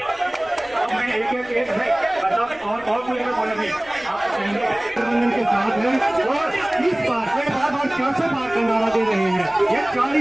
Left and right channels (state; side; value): noise; left; rumble, 26 dB below the sound